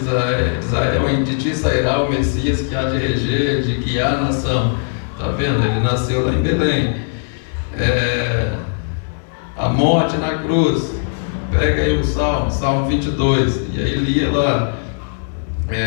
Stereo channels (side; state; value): right; silent; 61 dB below the other